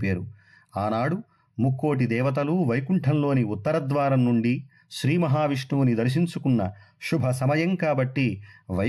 పేరు. ఆనాడు ముక్కోటి దేవతలు వైకుంఠంలోని ఉత్తరద్వారం నుండి శ్రీ మహావిష్ణువుని దర్శించుకున్న శుభ సమయం కాబట్టి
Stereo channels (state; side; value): identical; both; correlation 1.00